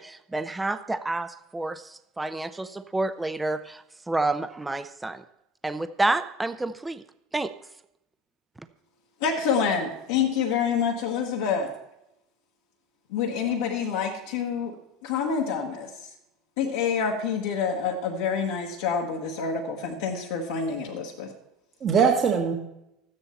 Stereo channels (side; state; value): both; normal; correlation 0.35